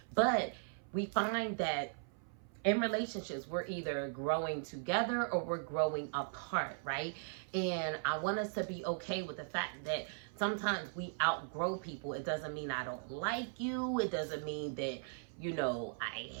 But we find that in relationships, we're either growing together or we're growing apart, right? And I want us to be okay with the fact that sometimes we outgrow people. It doesn't mean I don't like you. It doesn't mean that, you know, I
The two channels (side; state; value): left; silent; 52 dB below the other